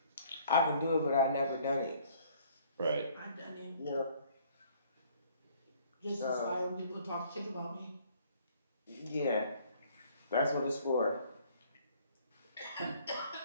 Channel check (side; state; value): both; inverted; correlation -0.59